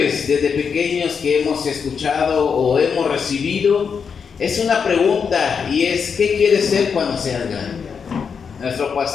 desde pequeños que hemos escuchado o hemos recibido es una pregunta, y es: ¿qué quieres ser cuando seas grande? Nuestro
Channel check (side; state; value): right; quieter; 6.3 dB